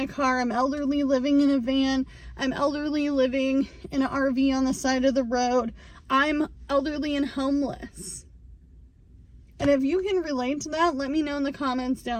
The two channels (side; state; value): both; identical; correlation 1.00